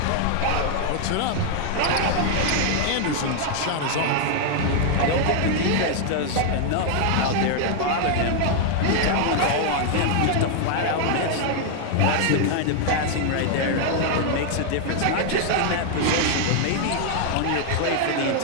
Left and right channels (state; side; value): different; both; correlation 0.00